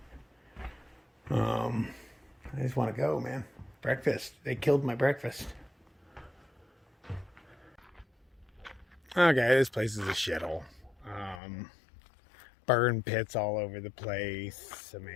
I just want to go, man. Breakfast. They killed my breakfast. Okay, this place is a shithole. Burn pits all over the place. I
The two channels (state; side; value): drops out; right; at 11.4 s